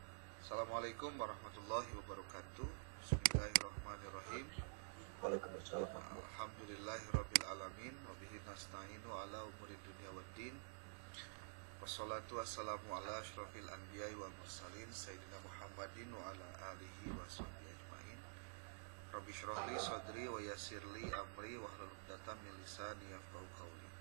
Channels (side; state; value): left; silent; digital silence